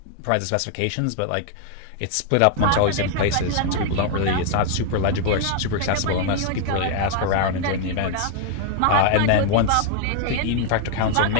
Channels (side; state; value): both; different; correlation 0.00